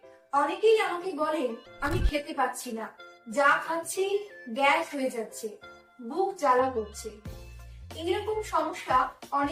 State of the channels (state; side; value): identical; both; correlation 1.00